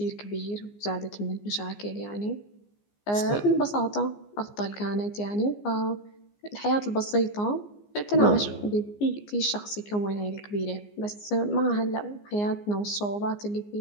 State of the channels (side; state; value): right; late; 15 ms